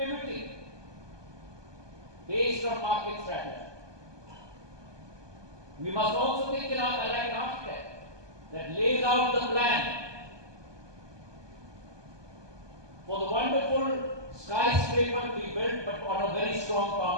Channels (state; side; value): late; left; 1.2 ms